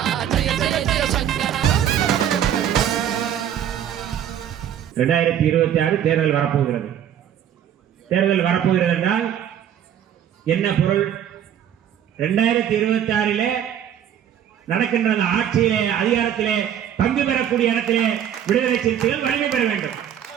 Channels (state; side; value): quieter; left; 9.8 dB